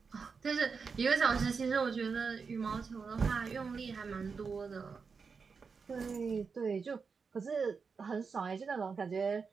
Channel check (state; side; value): quieter; left; 5.3 dB